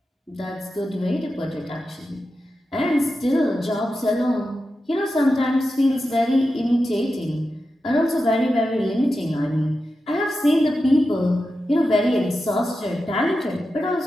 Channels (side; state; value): both; normal; correlation 0.91